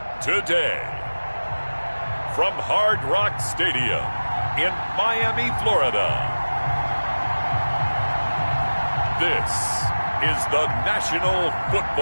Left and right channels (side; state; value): both; inverted; correlation -1.00